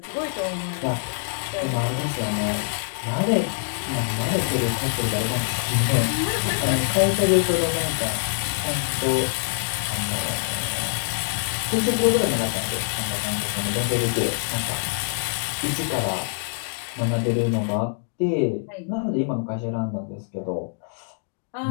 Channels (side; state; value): right; silent; digital silence